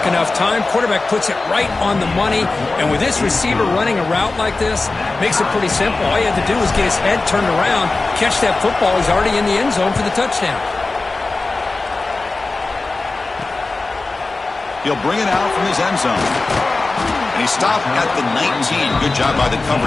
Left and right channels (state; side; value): quieter; right; 3.5 dB